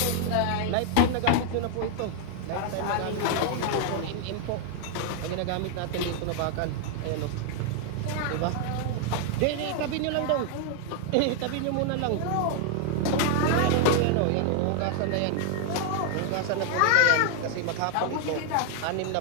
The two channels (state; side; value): different; both; correlation 0.00